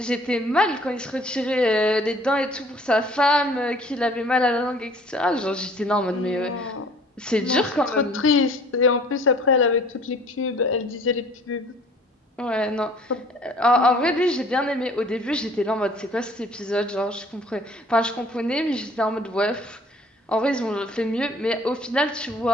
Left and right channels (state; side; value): normal; both; correlation 0.53